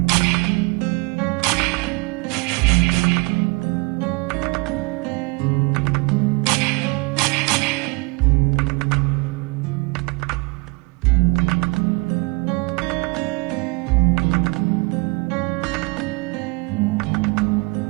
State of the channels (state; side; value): quieter; left; 27.9 dB